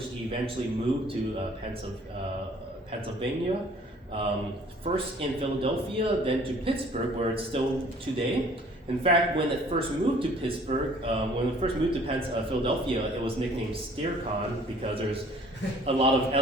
eventually moved to Pennsylvania. First in Philadelphia, then to Pittsburgh, where it's still today. In fact, when it first moved to Pittsburgh, when it first moved to Philadelphia, it was nicknamed SteerCon because there's a lot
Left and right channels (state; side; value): normal; both; correlation 0.55